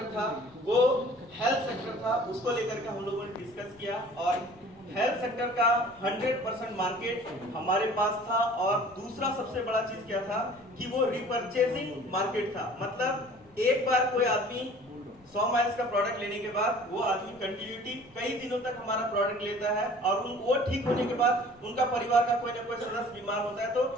था वो हेल्थ सेक्टर था, उसको लेकर के हम लोगों ने डिस्कस किया, और हेल्थ सेक्टर का 100% मार्केट हमारे पास था। और दूसरा सबसे बड़ा चीज क्या था कि वो रिपर्चेसिंग मार्केट था, मतलब एक बार कोई आदमी 100 माइल्स का प्रोडक्ट लेने के बाद वो आदमी कंटिन्यूटी कई दिनों तक हमारा प्रोडक्ट लेता है, और वो ठीक होने के बाद उनका परिवार का कोई ना कोई सदस्य बीमार होता है, तो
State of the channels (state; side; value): noise; left; rumble, 28 dB below the sound